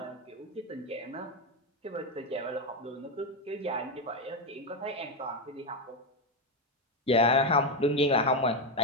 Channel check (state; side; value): normal; both; correlation 0.09